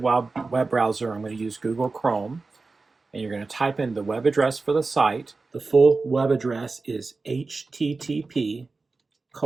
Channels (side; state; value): left; quieter; 3.9 dB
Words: web browser. I'm going to use Google Chrome, and you're going to type in the web address for the site. The full web address is